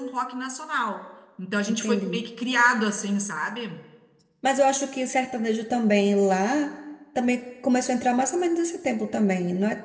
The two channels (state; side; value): identical; both; correlation 1.00